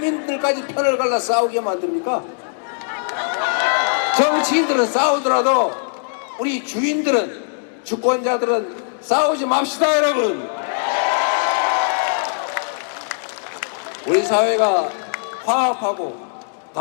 편을 갈라 싸우게 만듭니까? 정치인들은 싸우더라도 우리 주인들은 주권자들은 싸우지 맙시다 여러분. 우리 사회가 화합하고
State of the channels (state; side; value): silent; right; digital silence